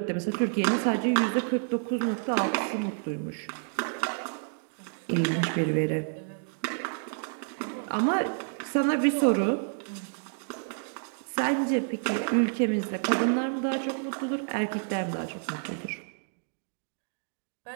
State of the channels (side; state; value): left; silent; digital silence